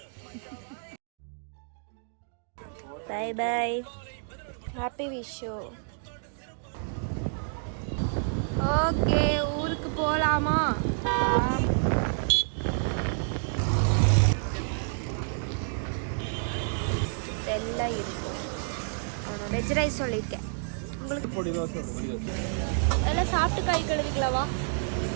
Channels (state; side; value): silent; left; digital silence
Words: Bye bye, happy Vishu. Okay, ஊருக்கு போகலாமா? எல்லாம் இருக்கும். வெஜ் ரைஸ் சொல்லியிருக்கேன் உங்களுக்கு. எல்லாம் சாப்பிட்டு கை கழுவிக்கலாவா?